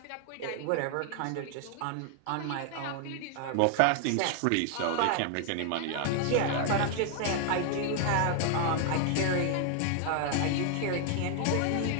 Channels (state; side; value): different; both; correlation 0.00